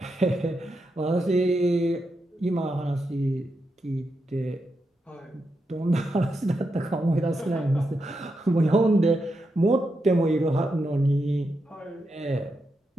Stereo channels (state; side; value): normal; both; correlation 0.85